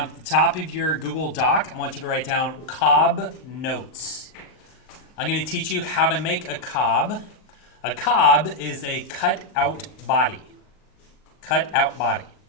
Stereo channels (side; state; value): right; late; 38 ms